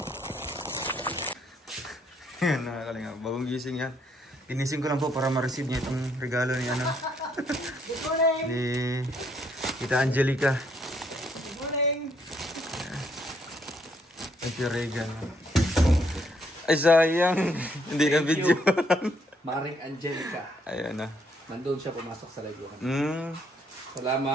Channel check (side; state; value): both; normal; correlation 0.71